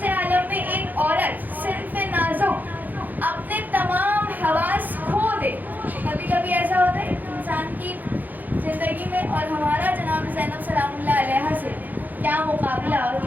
عالم میں ایک عورت صنف نازک اپنے تمام حواس کھو دے۔ کبھی کبھی ایسا ہوتا ہے انسان کی زندگی میں، اور ہمارا جناب زینب سلام اللہ علیہ سے کیا مقابلہ اور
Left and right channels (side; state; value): left; late; 0.084 ms